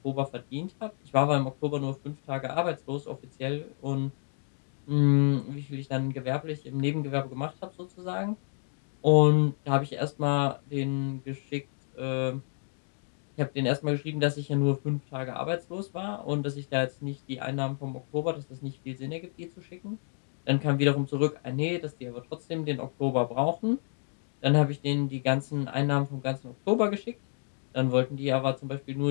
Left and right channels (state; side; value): silent; right; digital silence